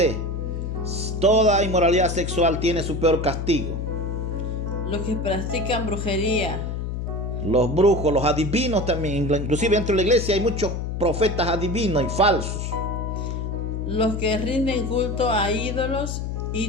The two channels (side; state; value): left; noise; hum, 4 dB below the sound